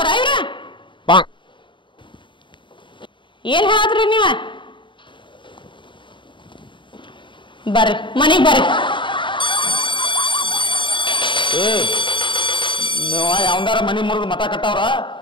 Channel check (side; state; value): right; late; 0.23 ms